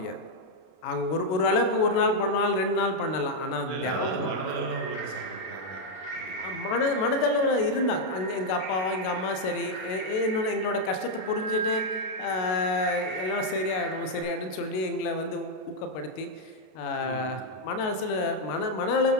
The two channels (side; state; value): right; late; 32 ms